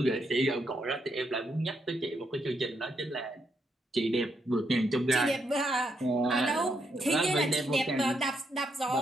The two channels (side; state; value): both; normal; correlation 0.78